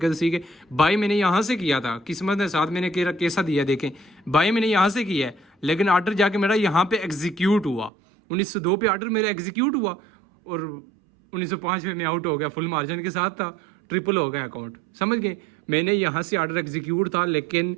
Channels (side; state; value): left; drops out; at 7.9 s